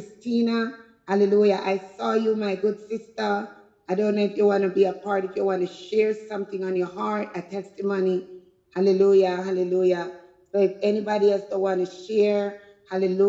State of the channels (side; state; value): both; identical; correlation 1.00